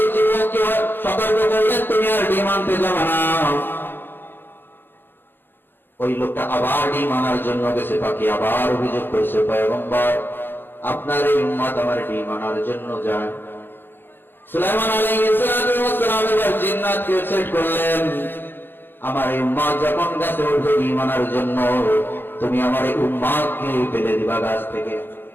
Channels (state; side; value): late; right; 0.10 ms